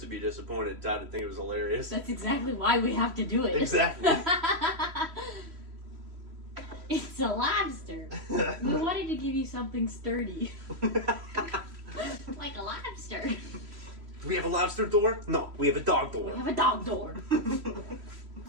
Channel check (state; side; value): late; left; 3.1 ms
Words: be disappointed. Todd would think it was hilarious. That's exactly why we have to do it. Exactly. It's a lobster. We wanted to give you something sturdy. Like a lobster. Do we have a lobster door? No, we have a dog door. We have a dog door.